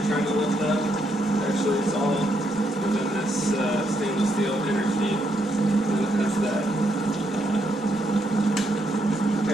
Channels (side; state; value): both; normal; correlation 0.76